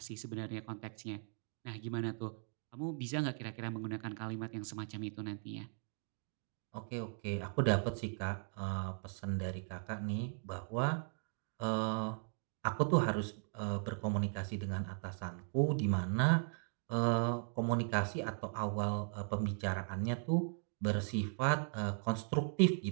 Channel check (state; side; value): silent; left; 52 dB below the other